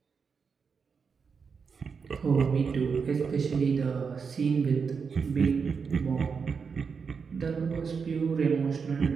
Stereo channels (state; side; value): quieter; left; 5.7 dB